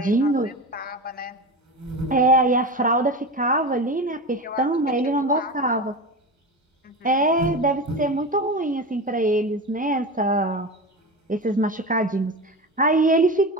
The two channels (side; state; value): both; normal; correlation 0.25